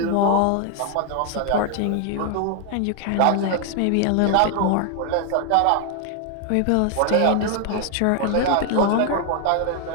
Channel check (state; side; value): different; both; correlation 0.00